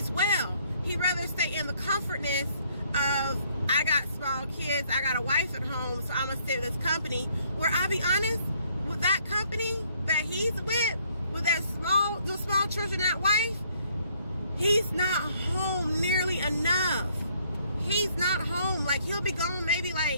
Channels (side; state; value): both; inverted; correlation -0.66